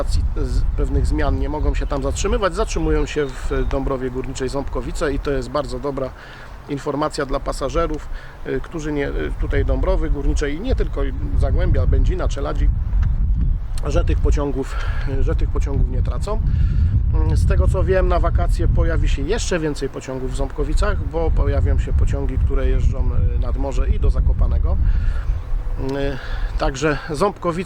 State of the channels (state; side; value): identical; both; correlation 1.00